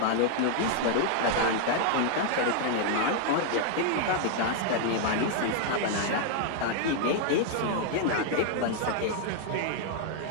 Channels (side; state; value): both; different; correlation 0.00